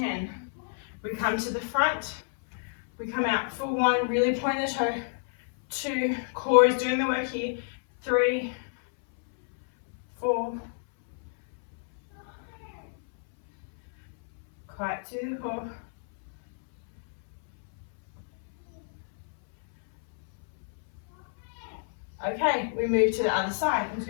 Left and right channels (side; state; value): right; silent; 59 dB below the other